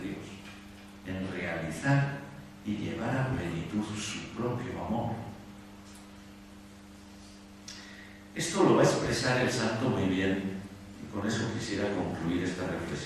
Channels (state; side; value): identical; both; correlation 1.00